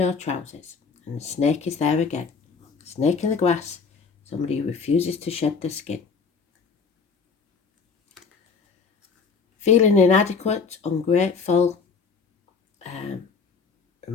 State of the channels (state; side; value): quieter; right; 5.3 dB